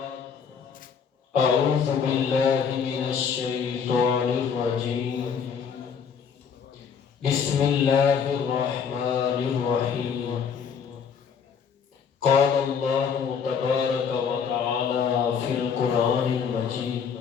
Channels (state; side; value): quieter; right; 6.7 dB